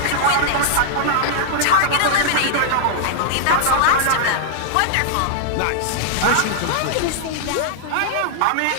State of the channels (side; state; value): both; different; correlation -0.01